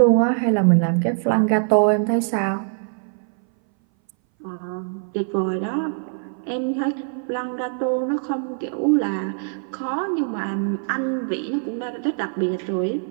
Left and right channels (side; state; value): left; silent; 60 dB below the other